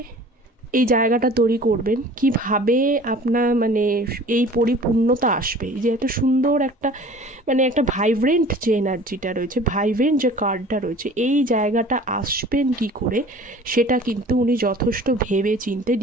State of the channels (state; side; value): normal; both; correlation 0.45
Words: এই জায়গাটা তৈরি করবেন, কিভাবে আপনার মানে এই পরিপূর্ণতা আসবে, যে এত সুন্দর একটা মানে একটা ভাইব্রেন্ট যে এনার্জিটা রয়েছে, ভাইব্রেন্ট যে কার্ডটা রয়েছে, এই জায়গাটা আসবেন কি করে, সেটা কিন্তু উনি যথেষ্ট ভেবে চিনতে